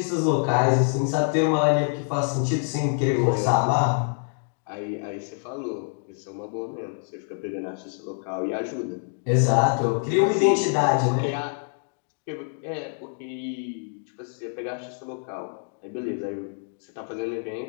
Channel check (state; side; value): silent; right; digital silence